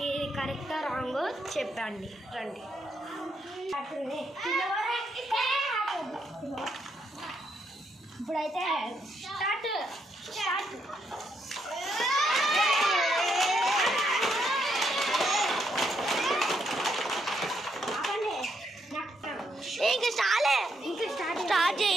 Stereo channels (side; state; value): both; normal; correlation 0.77